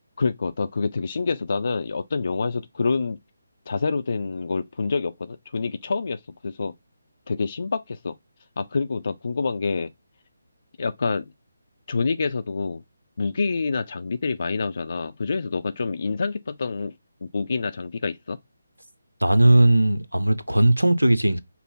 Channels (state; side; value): inverted; both; correlation -0.94